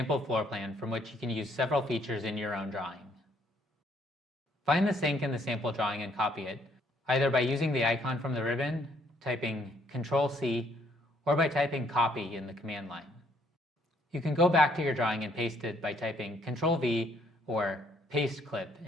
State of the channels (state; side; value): normal; both; correlation 0.67